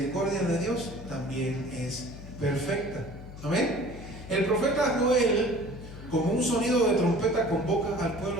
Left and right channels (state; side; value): noise; left; hum, 14 dB below the sound